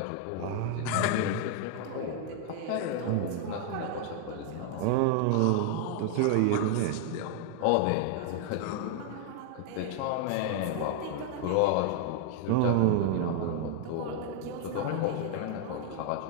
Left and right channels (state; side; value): different; both; correlation 0.00